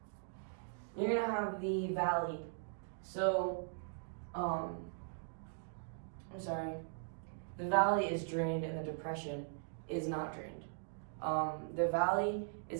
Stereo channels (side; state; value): left; silent; digital silence